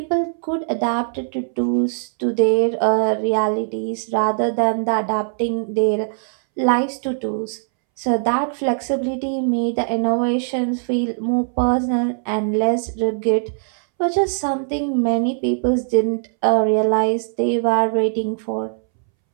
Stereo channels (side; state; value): left; silent; 64 dB below the other